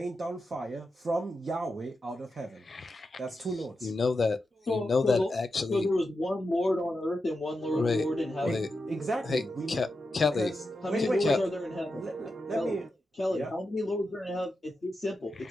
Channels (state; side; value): normal; both; correlation 0.89